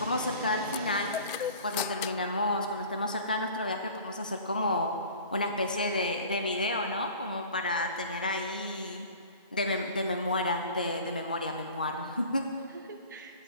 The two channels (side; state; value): both; inverted; correlation -0.43